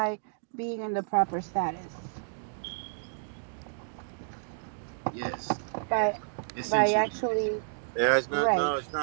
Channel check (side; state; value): left; silent; digital silence